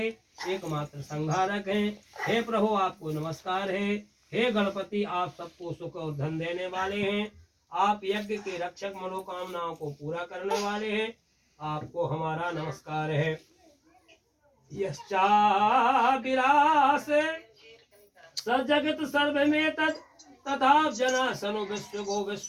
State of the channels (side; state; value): both; identical; correlation 1.00